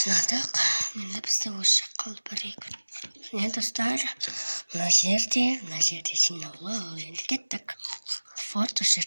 мен лэпстэй ушгал барыг нэ достар нажерти шинэлөө гэдэг фото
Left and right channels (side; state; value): both; inverted; correlation -1.00